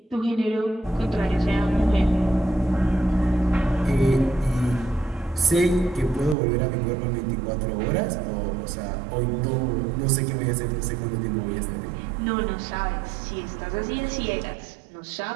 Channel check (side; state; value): left; drops out; at 6.4 s